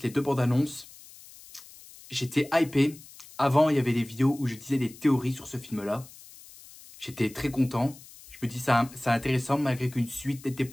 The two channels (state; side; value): noise; left; hiss, 20 dB below the sound